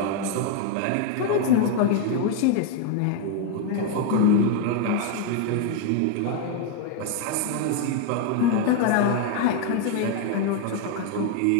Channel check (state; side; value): different; both; correlation 0.01